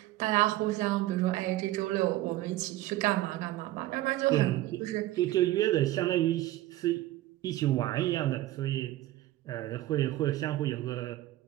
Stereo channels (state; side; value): quieter; left; 15.8 dB